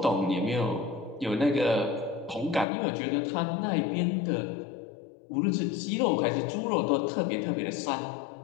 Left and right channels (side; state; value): right; drops out; at 2.7 s